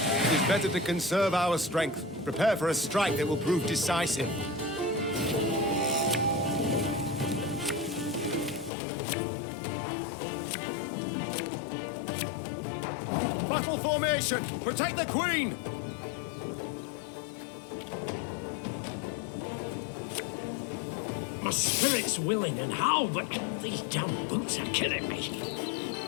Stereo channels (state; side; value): drops out; right; at 8.7 s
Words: is better to conserve our strength. Prepare for a strike that will prove decisive. Battle formation! Protect the Queen! My spirit's willing and how, but these damn boots are killing me.